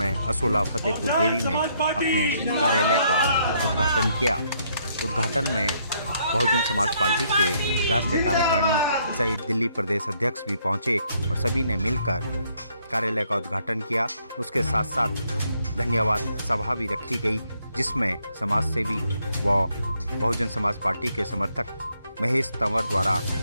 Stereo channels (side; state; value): both; inverted; correlation -0.71